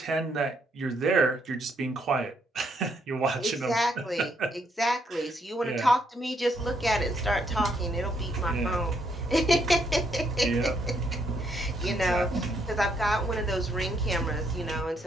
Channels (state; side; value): normal; both; correlation 0.73